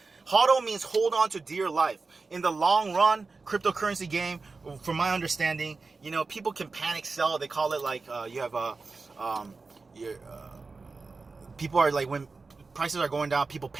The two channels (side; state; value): left; quieter; 4.1 dB